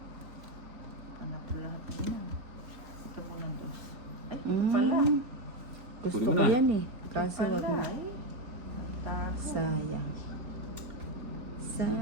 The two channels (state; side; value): late; left; 3.9 ms